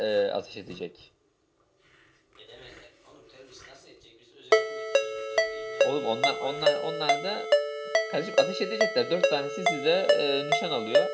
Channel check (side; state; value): both; identical; correlation 1.00